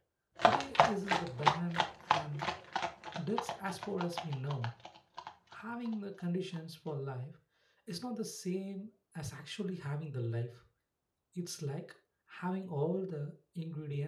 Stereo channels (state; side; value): identical; both; correlation 1.00